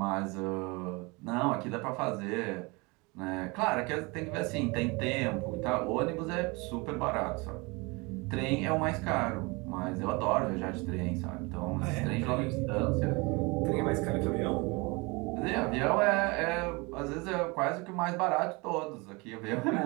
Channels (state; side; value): quieter; left; 26.7 dB